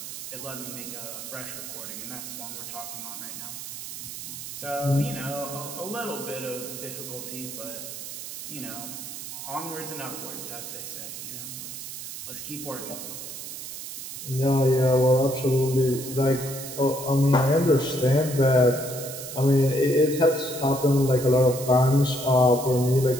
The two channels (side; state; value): right; noise; hiss, 9 dB below the sound